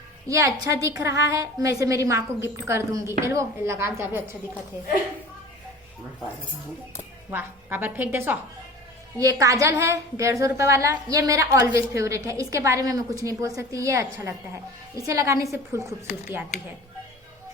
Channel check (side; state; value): both; normal; correlation 0.40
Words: ये अच्छा दिख रहा है, मैं इसे मेरी माँ को गिफ्ट कर दूंगी। वो लगा जा भी अच्छा दिखा थे। वाह, काबर फेंक दे सो। ये काजल है 150 रुपए वाला, ये मेरा ऑलवेज फेवरेट है, इसके बारे में मैं कुछ नहीं बोल सकती, ये अच्छा लगता है, इसे लगाने से फुल खूबसूरती आती है।